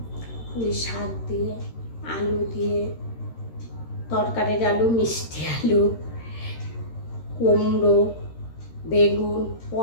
পুঁই শাক দিয়ে, আলু দিয়ে, তরকারির আলু, মিষ্টি আলু, কুমড়ো, বেগুন,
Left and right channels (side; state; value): right; late; 13 ms